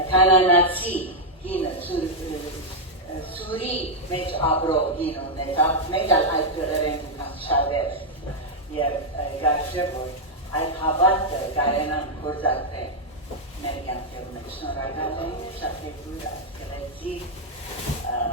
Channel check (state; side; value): normal; both; correlation -0.02